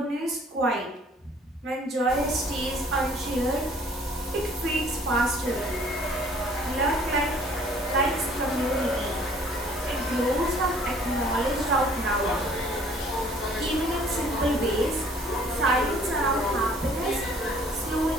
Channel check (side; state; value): both; normal; correlation 0.56